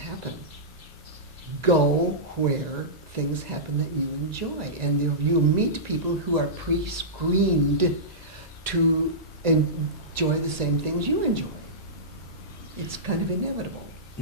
Go where things happen that you enjoy, and you'll meet people who are pre-screened to enjoy the same things you enjoy. It's kind of inevitable.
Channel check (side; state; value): both; normal; correlation -0.17